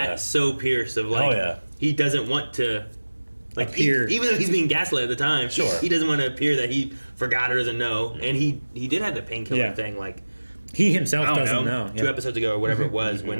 so Pierce of like, he doesn't want to, like, appear. Even though he's being gaslit at the time, he doesn't want to appear that he forgot or doesn't know. And he did have the painkiller thing, like, he himself doesn't know. 2 episodes ago or whatever it was, when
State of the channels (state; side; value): inverted; both; correlation -1.00